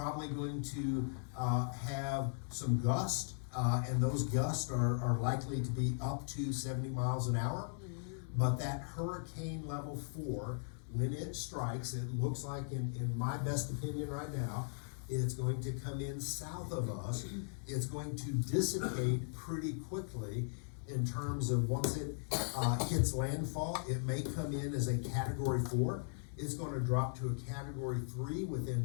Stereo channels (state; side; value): silent; right; digital silence